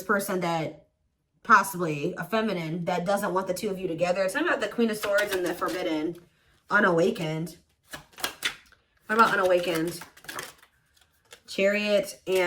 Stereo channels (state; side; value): identical; both; correlation 1.00